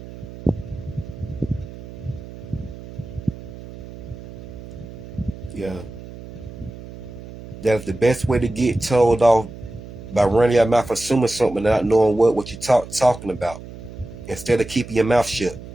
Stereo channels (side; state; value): right; noise; hum, 14 dB below the sound